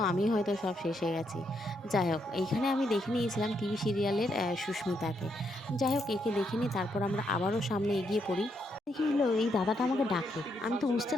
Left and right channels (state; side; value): normal; both; correlation 0.77